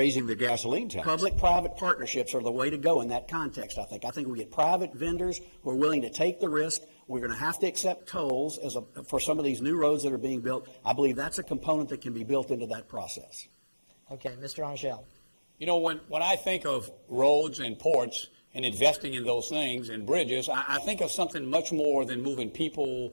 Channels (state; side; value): inverted; both; correlation -1.00